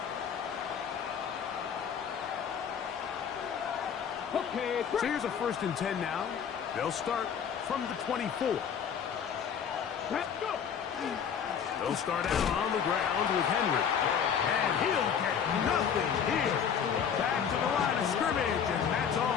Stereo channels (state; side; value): quieter; right; 7.6 dB